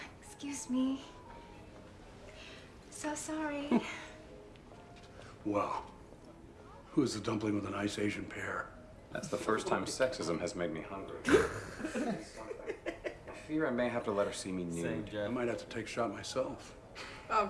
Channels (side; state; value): both; identical; correlation 1.00